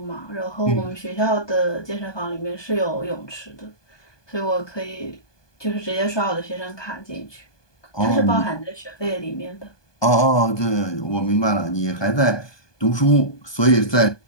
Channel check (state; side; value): late; right; 1.2 ms